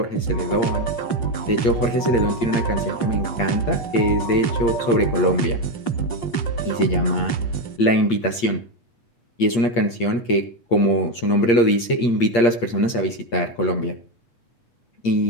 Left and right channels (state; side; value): late; right; 8.7 ms